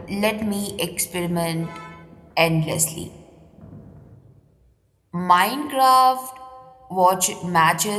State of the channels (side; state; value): both; identical; correlation 1.00